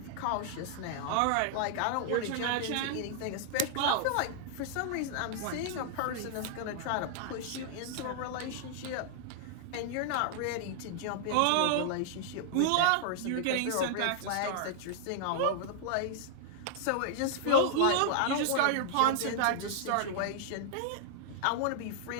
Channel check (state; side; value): different; both; correlation -0.01